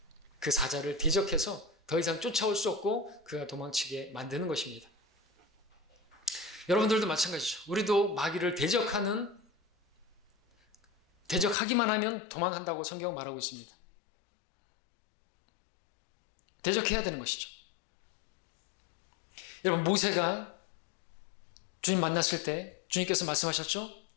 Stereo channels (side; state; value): right; drops out; at 11.6 s